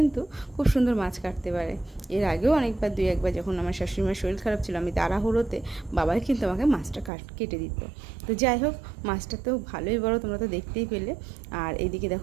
খুব সুন্দর মাছ কাটতে পারে। এর আগেও অনেকবার দুই একবার যখন আমার শাশুড়িমার শরীর খারাপ ছিল, আমি তাড়াহুড়োতে বাবাই কিন্তু আমাকে মাছটা কেটে দিত। তো যাই হোক, মাছটা তো ভালোই বড়, তোমরা তো দেখতেই পেলে। আর এইদিকে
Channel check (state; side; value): drops out; left; at 7.1 s